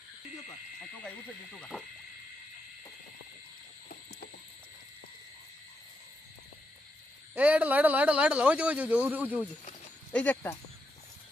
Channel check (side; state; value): both; normal; correlation 0.83